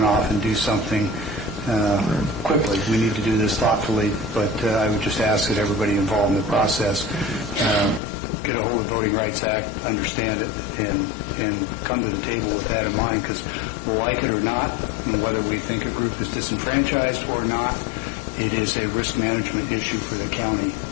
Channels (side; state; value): right; drops out; at 8.0 s